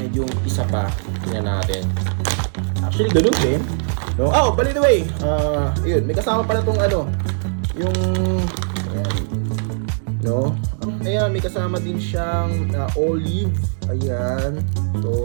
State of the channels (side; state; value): left; silent; digital silence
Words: yung isa pa, tingnan natin. Actually, ganun din. No? Oh, by the way, yun, may kasama pala tong yung, ayan, no? Ayan, may kasama din siyang olive. Ayan.